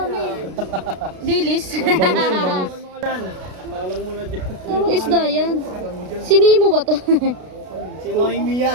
Dilis. Malang muna dyan. Anong isda yan? Sinimo ba to? Si Noemi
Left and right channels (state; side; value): late; left; 32 ms